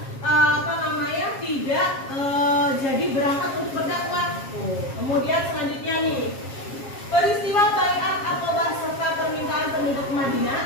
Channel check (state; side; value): late; right; 7.4 ms